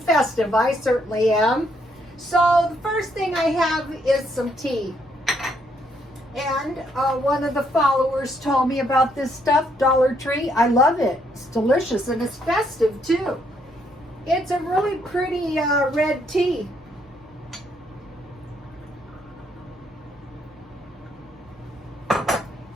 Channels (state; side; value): normal; both; correlation 0.72